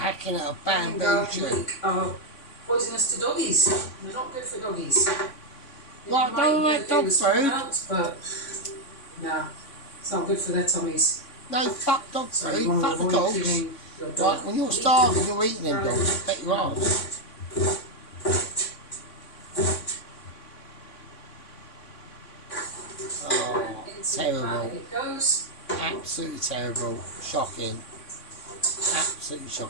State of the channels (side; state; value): right; late; 3.6 ms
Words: at a bamboo tree. Are poisonous to doggies. They're not good for doggies. Right, don't like dog food. But no, it's not good for their tummies. No, fuck dog So food, you want to fuck the avoid dogs. giving your dog Right, when you're starving, you're eating them dogs. Bet you are. Oh, terrible. It goes. Absolutely terrible. Shocking. Absolutely